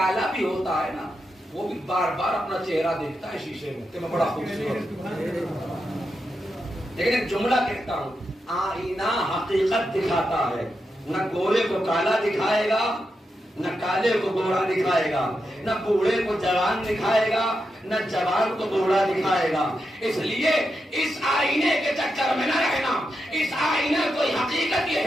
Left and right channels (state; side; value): normal; both; correlation 0.87